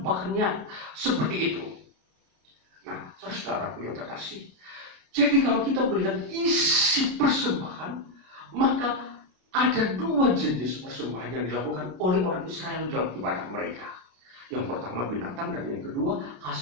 seperti itu. Nah, saudara-saudaraku yang terkasih, jadi kalau kita melihat isi persembahan, maka ada dua jenis persembahan yang dilakukan oleh orang Israel dalam ibadah mereka. Yang pertama binatang, dan yang kedua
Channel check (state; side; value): late; left; 32 ms